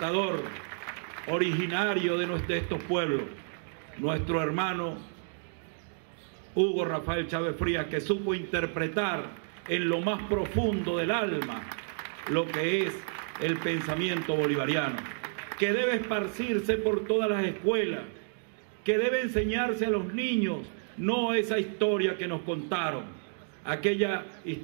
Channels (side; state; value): left; silent; digital silence